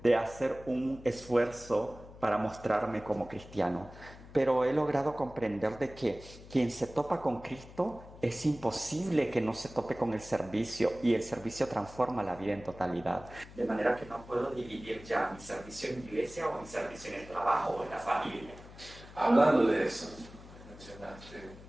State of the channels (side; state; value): left; noise; hum, 18 dB below the sound